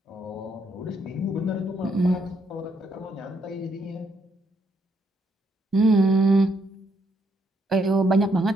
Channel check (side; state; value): both; normal; correlation 0.74